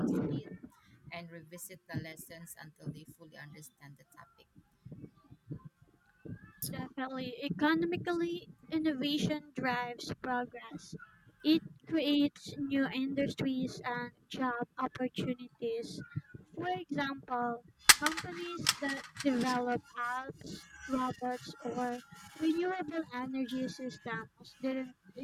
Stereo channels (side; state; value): both; identical; correlation 1.00